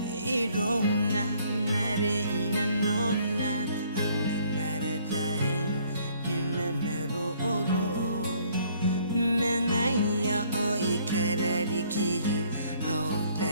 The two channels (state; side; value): inverted; both; correlation -0.62